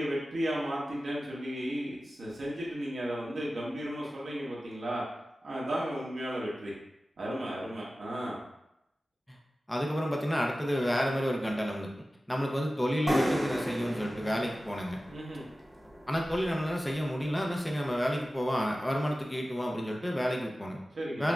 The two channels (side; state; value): both; normal; correlation 0.95